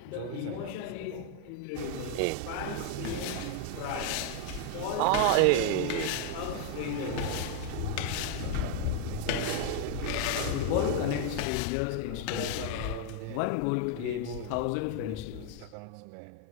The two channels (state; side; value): different; both; correlation 0.00